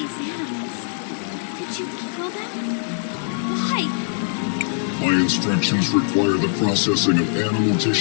animals. Did you kill them? Why? My instructions require the processing of animal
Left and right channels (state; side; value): silent; right; 58 dB below the other